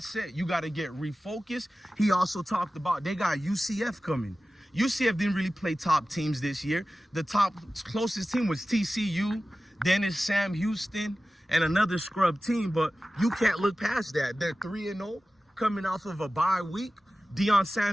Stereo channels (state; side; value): normal; both; correlation 0.95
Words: You got to get refocused. He also talked about they got UCF coming. UCF didn't really play top teams this year. The closest team was TCU, then it's Sam Houston, and another scrub team, but you can't look past that. They're 3-0 coming off of a bye week. Deion